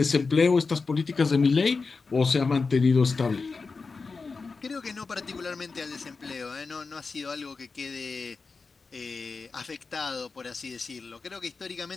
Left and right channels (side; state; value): right; quieter; 4.4 dB